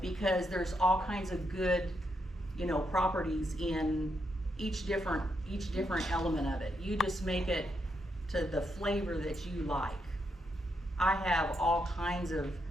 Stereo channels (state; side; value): normal; both; correlation 0.80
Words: because there's all kinds of good, you know, properties in each different element of it. You just make it to the flavor that you like. I have all kinds of